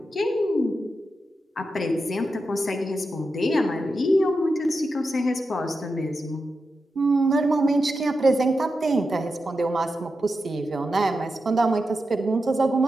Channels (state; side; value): normal; both; correlation 0.89